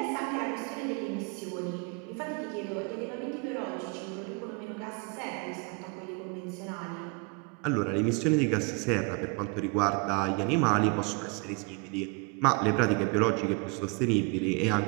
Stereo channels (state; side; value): quieter; left; 31.7 dB